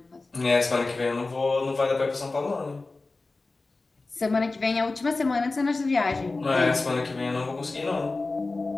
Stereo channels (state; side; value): quieter; right; 3.5 dB